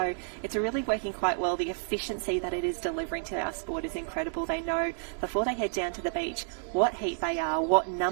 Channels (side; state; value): left; silent; digital silence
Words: it's really working quite well. The efficiency that it is delivering to our sport is incredible. They know before they head down to the beach what heat they are, what